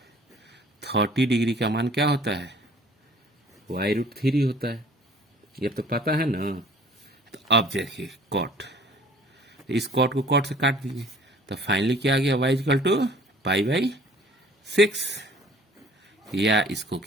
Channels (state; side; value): normal; both; correlation 0.52